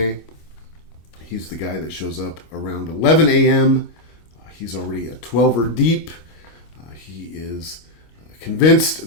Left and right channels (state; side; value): late; right; 26 ms